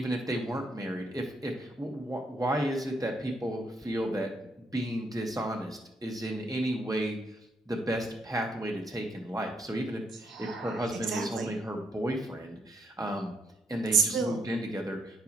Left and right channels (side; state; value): both; normal; correlation 0.75